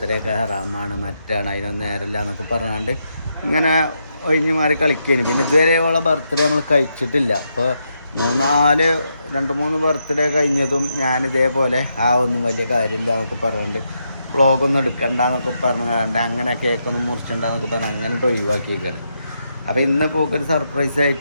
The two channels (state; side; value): inverted; both; correlation -0.82